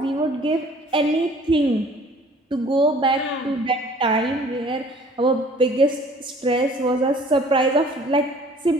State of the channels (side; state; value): both; normal; correlation 0.53